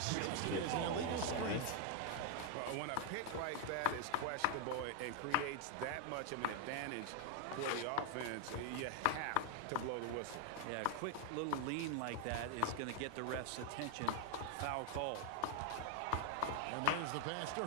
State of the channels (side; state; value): both; different; correlation 0.00